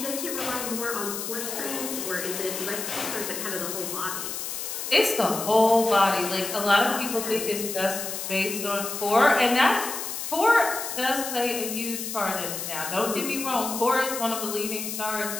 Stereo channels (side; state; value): left; noise; hiss, 5 dB below the sound